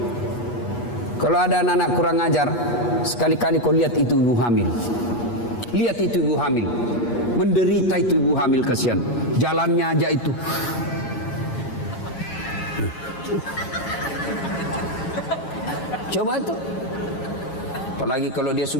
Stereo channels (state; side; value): late; right; 8.1 ms